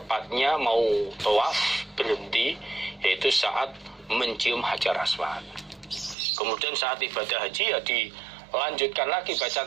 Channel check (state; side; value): drops out; left; at 6.2 s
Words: mau tawaf berhenti, yaitu saat mencium Hajar Aswad. Kemudian saat ibadah haji ya dilanjutkan lagi